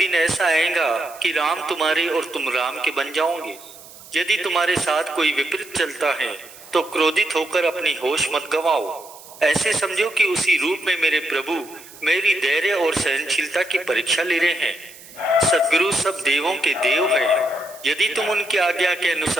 ऐसा आएगा कि राम तुम्हारे और तुम राम के बन जाओगे। यदि तुम्हारे साथ कोई विपरीत चलता है तो क्रोधित होकर अपनी होश मत गंवाओ। ऐसे समझो कि उसी रूप में मेरे प्रभु मेरी धैर्य और सहनशीलता की परीक्षा ले रहे हैं। सद्गुरु सब देवों के देव हैं। यदि तुम उनकी आज्ञा के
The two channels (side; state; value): right; noise; hiss, 19 dB below the sound